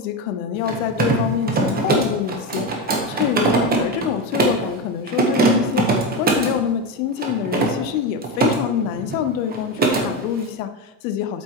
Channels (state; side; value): normal; both; correlation 0.16